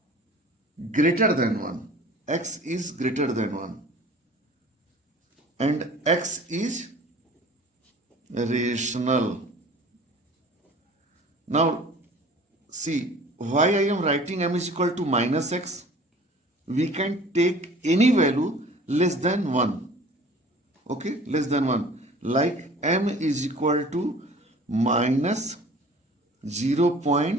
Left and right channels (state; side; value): normal; both; correlation 0.46